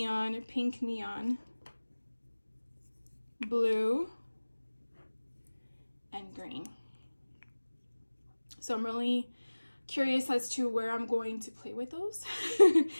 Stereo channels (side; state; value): both; inverted; correlation -1.00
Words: pink neon, blue, and green. So I'm really curious as to where I'm going to play with those.